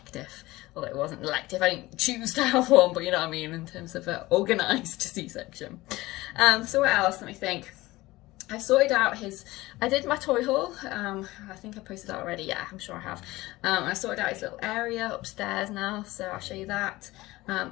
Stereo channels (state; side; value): quieter; right; 19.1 dB